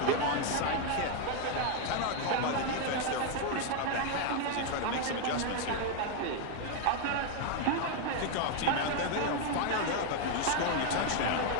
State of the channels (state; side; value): different; both; correlation 0.01